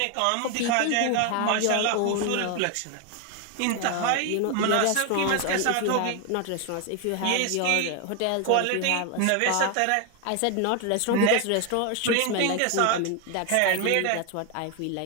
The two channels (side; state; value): both; different; correlation 0.01